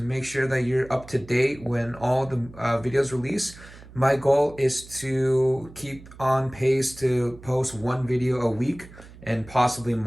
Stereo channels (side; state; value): right; noise; hum, 19 dB below the sound